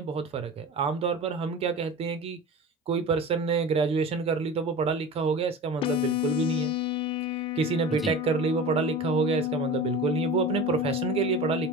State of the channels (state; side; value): normal; both; correlation 0.34